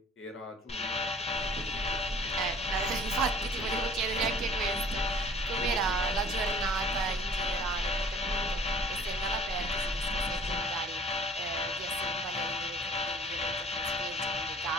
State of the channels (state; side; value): normal; both; correlation 0.51